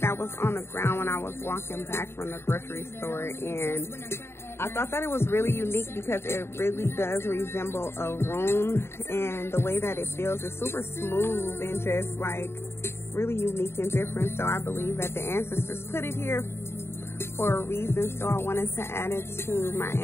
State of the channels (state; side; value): late; right; 0.12 ms